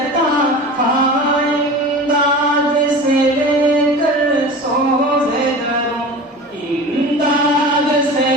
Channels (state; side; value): normal; both; correlation 0.34